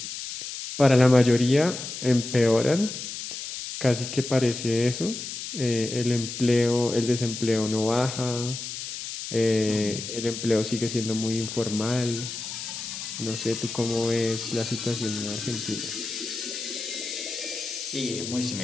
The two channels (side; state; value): left; noise; hiss, 7 dB below the sound